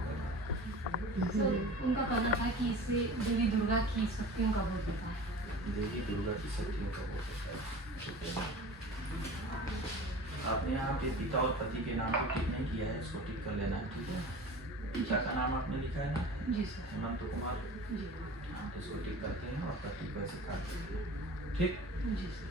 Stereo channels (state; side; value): normal; both; correlation 0.38